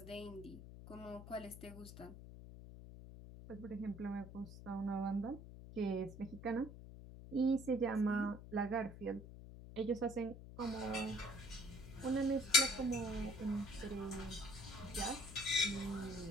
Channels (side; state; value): left; noise; hum, 13 dB below the sound